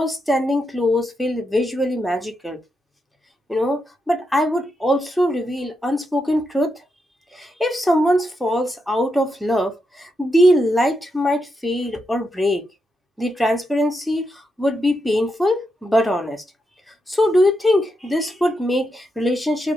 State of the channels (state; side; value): normal; both; correlation 0.84